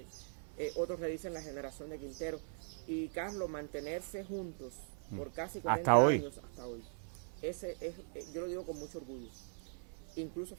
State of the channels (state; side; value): silent; left; 51 dB below the other